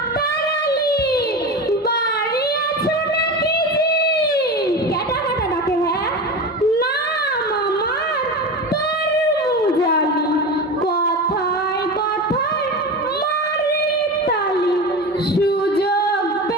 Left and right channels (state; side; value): normal; both; correlation 0.26